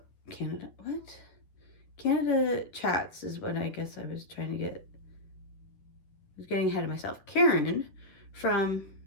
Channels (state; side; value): late; right; 11 ms